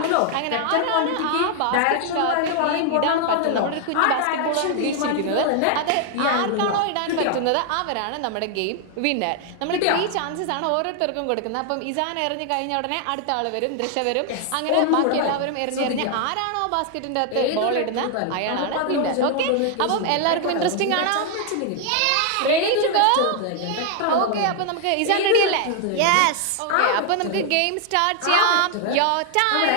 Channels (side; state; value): both; different; correlation 0.00